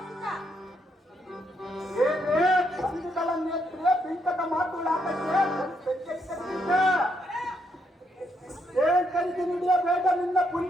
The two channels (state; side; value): normal; both; correlation 0.76